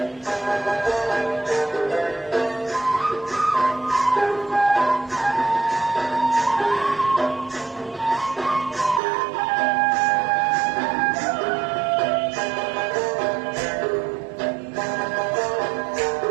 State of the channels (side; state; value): left; drops out; at 9.0 s